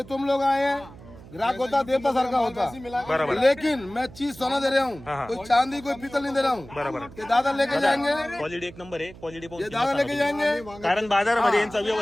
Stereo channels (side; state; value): right; noise; hum, 19 dB below the sound